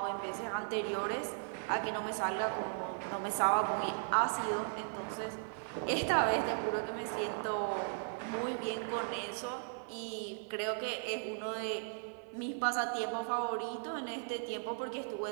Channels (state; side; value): silent; left; 53 dB below the other